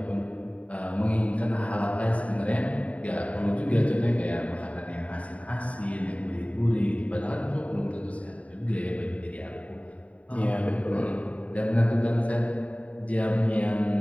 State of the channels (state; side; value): late; right; 0.067 ms